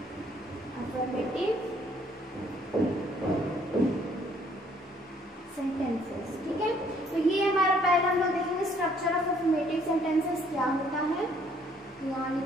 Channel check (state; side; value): normal; both; correlation 0.63